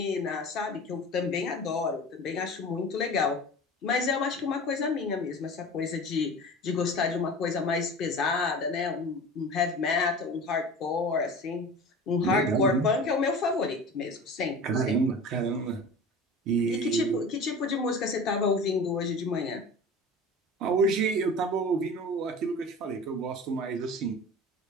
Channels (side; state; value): both; normal; correlation 0.36